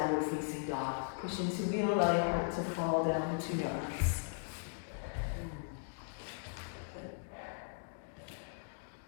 facing dog. Push into wheel, allow your heart to fall down between your arms.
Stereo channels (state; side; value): silent; right; digital silence